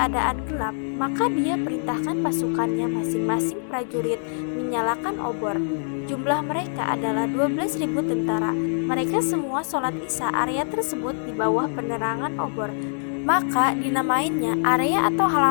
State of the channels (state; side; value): silent; right; digital silence